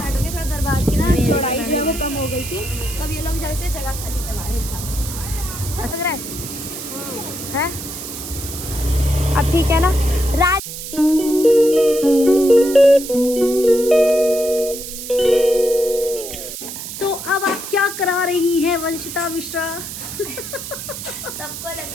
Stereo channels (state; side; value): noise; right; hiss, 9 dB below the sound